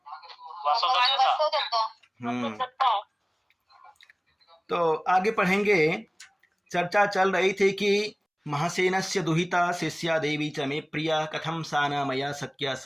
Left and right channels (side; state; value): both; identical; correlation 1.00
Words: तो आगे पढ़ेंगे। चर्चा चल रही थी कि महासेनस्य दुहिता शिष्या देवी च मे प्रिया कथम सा न मया शक्या